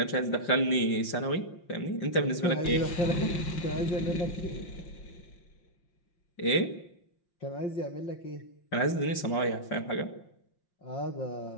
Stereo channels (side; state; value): right; late; 5.7 ms